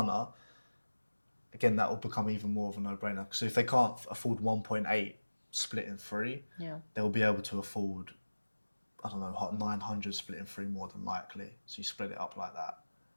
again, that will become even more of a no-brainer. So if they can't afford 1.8 split in three, they'll be able to afford, I don't know, 900 split in three more than likely. So you split it up like that.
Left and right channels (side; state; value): both; inverted; correlation -1.00